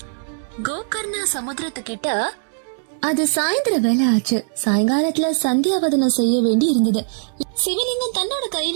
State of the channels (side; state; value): left; silent; 65 dB below the other